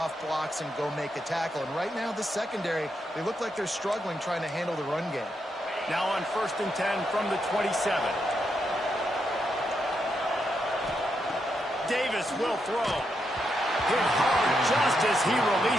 blocks and go make a tackle. And right now, the secondary, they look like they're struggling trying to handle the run game. Now on 1st and 10 from the 27. Davis will throw. Hit hard just as he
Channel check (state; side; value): normal; both; correlation 0.82